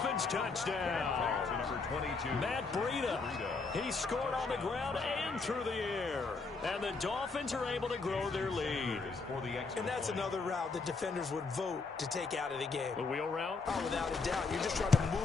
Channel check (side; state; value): right; quieter; 4.2 dB